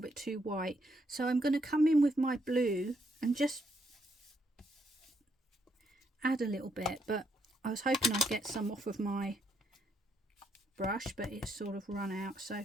bit too white, so I'm going to come in with my blue and just add a little bit, but I was hoping I'd get some off of my brush, but it's sort of run out,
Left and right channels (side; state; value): both; normal; correlation 0.74